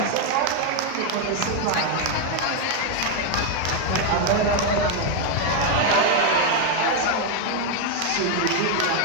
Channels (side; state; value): both; different; correlation 0.01